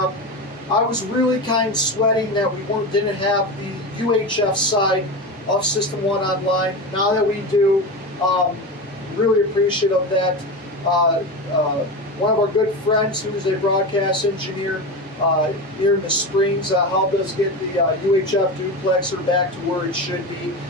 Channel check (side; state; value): both; normal; correlation 0.23